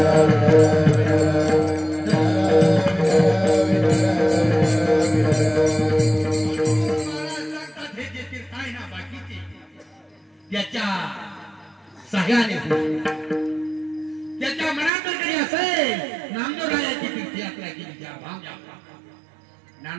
हे जे तीर्थ आहे ना बाकीचे त्याच्या सह्याने त्याच्या मनात जरी असेल नामदेवरायाची तीर्थयात्रा केली त्या भामयात्रा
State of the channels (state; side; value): drops out; left; at 14.9 s